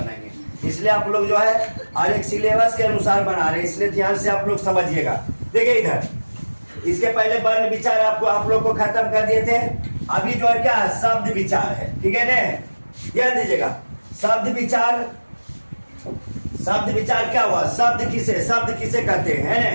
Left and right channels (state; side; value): inverted; both; correlation -1.00